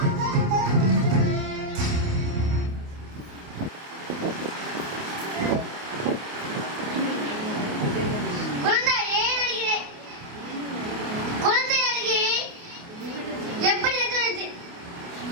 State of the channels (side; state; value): left; late; 28 ms